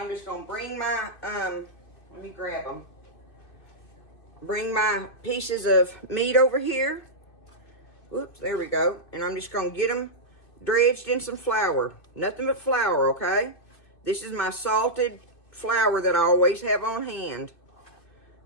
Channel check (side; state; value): right; late; 2.6 ms